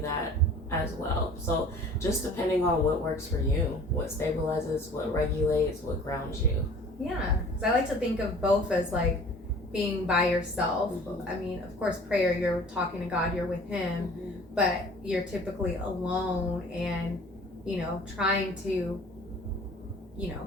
as well. So just depending on what works for you, what stabilizes, what regulates, what grounds you. Yeah, because I like to think of both as like being by yourself. I mean, of course, prayer, you're talking to God, you're with Him, but you're typically alone and, trying to,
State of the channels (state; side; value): normal; both; correlation 0.48